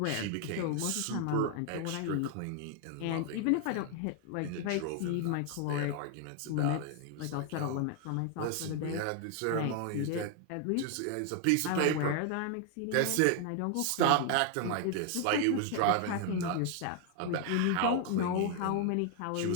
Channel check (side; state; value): both; different; correlation 0.00